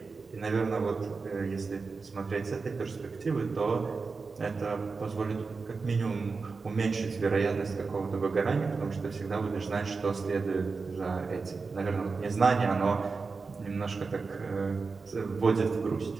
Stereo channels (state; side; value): quieter; left; 4.5 dB